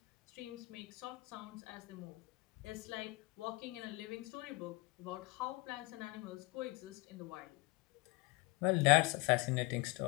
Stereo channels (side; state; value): right; quieter; 22.9 dB